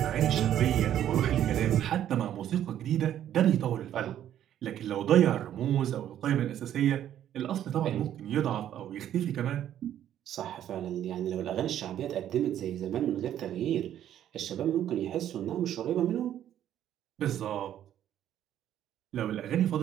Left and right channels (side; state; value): left; quieter; 11.0 dB